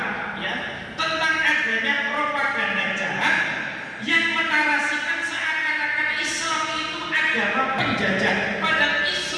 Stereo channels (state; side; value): identical; both; correlation 1.00